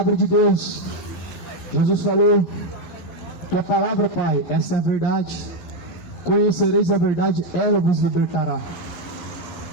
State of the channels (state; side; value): late; right; 11 ms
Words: de Deus. Jesus falou Tua palavra, Pai, essa é a verdade. Conhecereis a verdade, ela vos libertará.